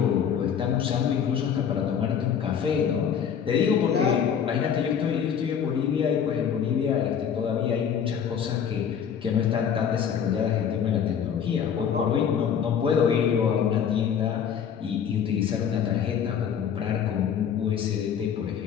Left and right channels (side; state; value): right; quieter; 8.0 dB